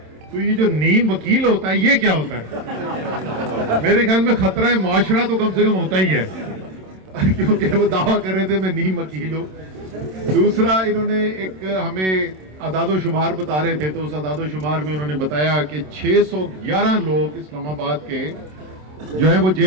تو یہ جو نیم وکیل ہوتا ہے یہ کیا ہوتا ہے؟ میرے خیال میں خطرہ معاشرہ تو کم سے کم ہوتا ہی ہے، کیونکہ وہ دعویٰ کر رہے تھے میں نیم وکیل ہوں۔ دوسرا انہوں نے ایک ہمیں اعداد و شمار بتا رہے تھے، تو اس اعداد و شمار میں انہوں نے بتایا کہ 611 لوگ اسلام آباد کے جو ہیں وہ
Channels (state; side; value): late; left; 27 ms